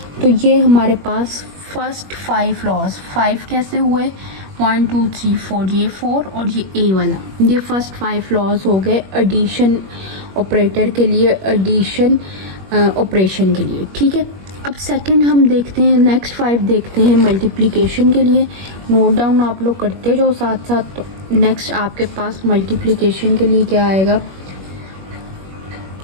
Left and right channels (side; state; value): left; late; 21 ms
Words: तो ये हमारे पास फर्स्ट 5 लॉज, 5 कैसे हुए, 1 2 3 4, ये 4 और ये ए वाला, ये फर्स्ट 5 लॉज हो गए एडिशन ऑपरेटर के लिए, एडिशन ऑपरेशन के लिए, ठीक है। अब सेकंड हम देखते हैं, नेक्स्ट 5 देखते हैं मल्टीप्लिकेशन के लिए। नोट डाउन आप लोग करते जाओ साथ साथ। तो नेक्स्ट आपके पास मल्टीप्लिकेशन के लिए क्या आएगा,